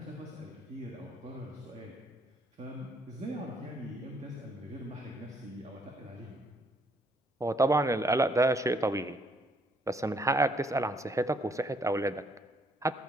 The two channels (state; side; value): normal; both; correlation 0.67